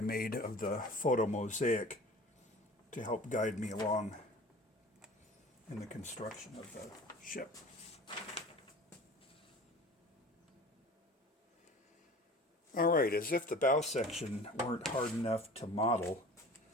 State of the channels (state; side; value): normal; both; correlation 0.41